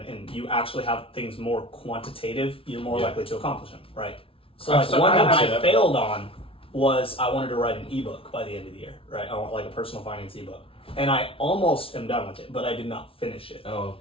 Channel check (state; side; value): late; right; 0.26 ms